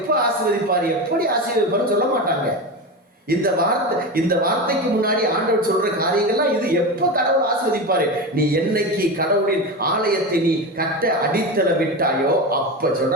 ஆசீர்வதிப்பார், எப்படி ஆசீர்வதிப்பார் சொல்ல மாட்டாங்க. இந்த வார்த்தைக்கு முன்னாடி ஆண்டவர் சொல்ற காரியங்கள்லாம், இது எப்ப கடவுள் ஆசீர்வதிப்பாரு, நீ என்னைக்கு கடவுளின் ஆலயத்தை நீ கட்ட அடித்தள விட்டாயோ அப்ப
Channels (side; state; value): both; normal; correlation 0.21